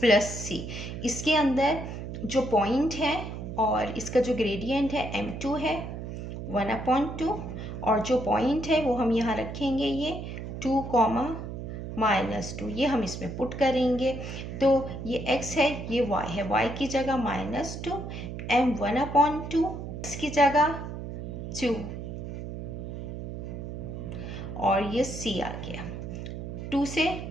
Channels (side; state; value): right; noise; hum, 7 dB below the sound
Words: c। इसके अंदर जो पॉइंट है और इसका जो ग्रेडियंट है m2 है 1/2, और जो पॉइंट है वो हम यहाँ रखेंगे ये 2, -2, ये हम इसमें पुट करेंगे। तो ये x है, ये y है, y की जगह -2, m 1/2, x की जगह 2, और ये c आ गया। 2 से